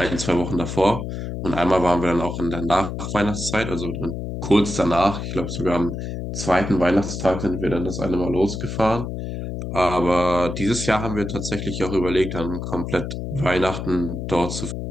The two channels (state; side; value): noise; left; hum, 5 dB below the sound